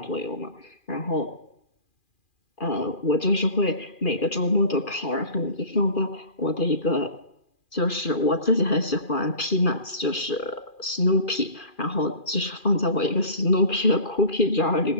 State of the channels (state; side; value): late; right; 2.4 ms